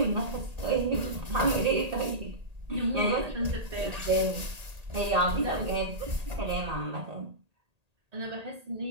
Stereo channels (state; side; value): late; left; 1.8 ms